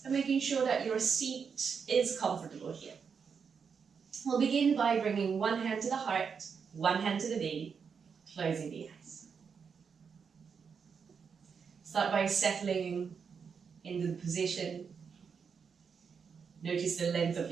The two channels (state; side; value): quieter; left; 6.2 dB